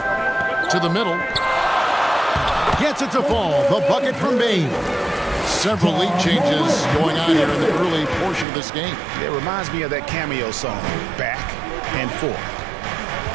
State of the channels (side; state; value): left; drops out; at 8.5 s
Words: To the middle. Gets it to fall. The bucket from Bane. Several lead changes going on here in the early portion of this game. It reminds me of that cameo song, Back and Forth.